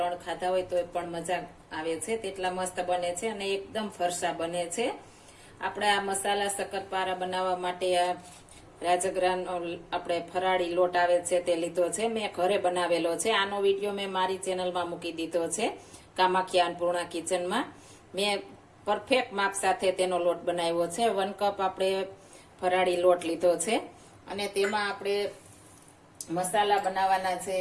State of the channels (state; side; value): identical; both; correlation 1.00